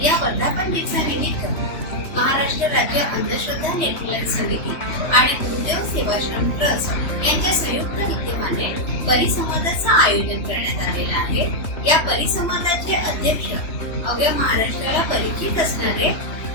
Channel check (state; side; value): late; right; 3.1 ms